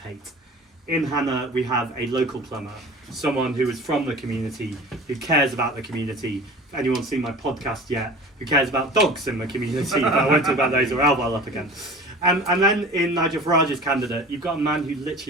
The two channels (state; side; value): normal; both; correlation 0.39